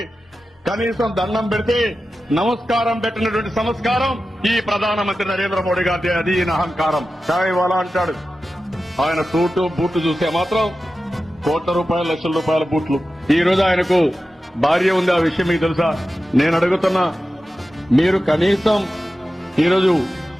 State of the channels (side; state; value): both; normal; correlation 0.93